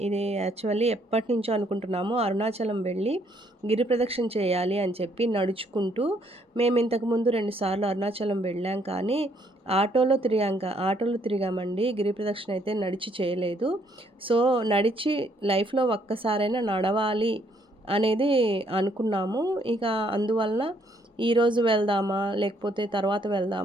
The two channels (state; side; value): normal; both; correlation 0.68